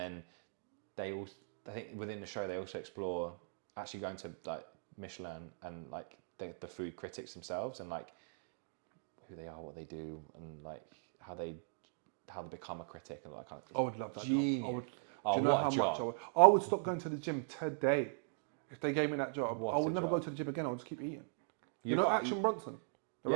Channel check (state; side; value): silent; left; digital silence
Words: I think within the show they also explore actually going to like Michelin and like the food critics themselves and like who they are, what they do, and like how they become a critic and all that kind of. I would love that. Genius. What a job! I would stop going to the gym today if they gave me that job. What I would a never job. go to the gym again. I would just keep eating. Action Bronson?